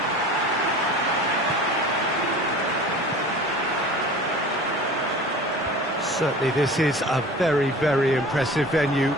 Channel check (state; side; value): normal; both; correlation 0.40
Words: Certainly this is a very, very impressive venue.